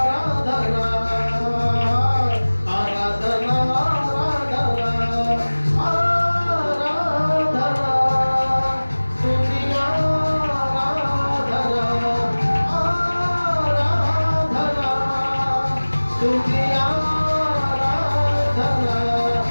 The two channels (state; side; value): inverted; both; correlation -1.00